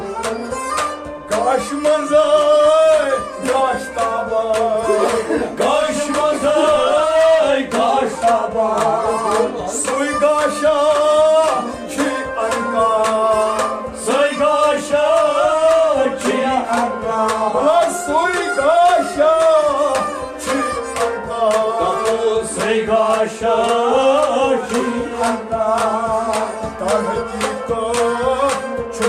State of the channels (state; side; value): identical; both; correlation 1.00